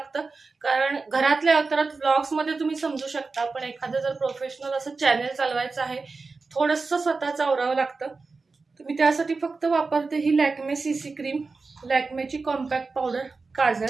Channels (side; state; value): left; quieter; 4.1 dB